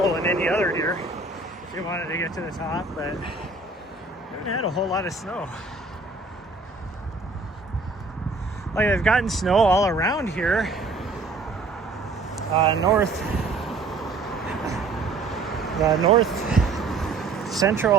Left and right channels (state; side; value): quieter; left; 3.5 dB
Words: any other year if you wanted to get to the top, but we haven't had a whole lot of snow. Like, I've gotten snow all around here, north